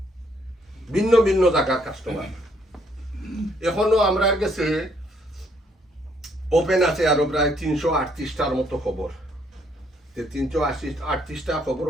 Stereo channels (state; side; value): normal; both; correlation 0.68